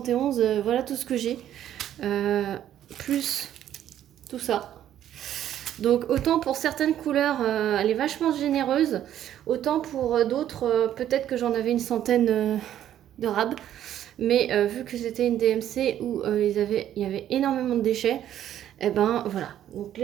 voilà tout ce que j'ai. Plus tout ça. Donc, autant pour certaines couleurs, elle est vachement généreuse, autant pour d'autres, peut-être que j'en avais une centaine de rabs. Mais vu que c'était une DMC où il y avait énormément de déchets, et ben voilà. Donc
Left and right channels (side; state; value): left; quieter; 11.3 dB